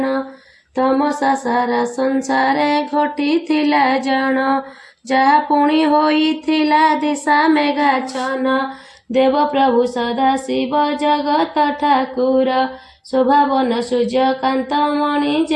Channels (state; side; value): identical; both; correlation 1.00